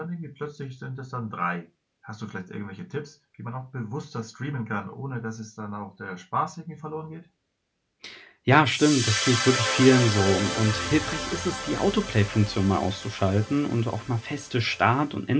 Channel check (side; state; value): both; identical; correlation 1.00